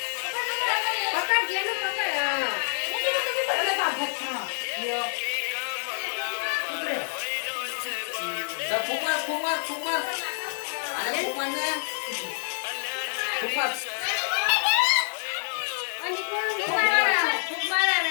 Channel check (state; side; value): silent; right; digital silence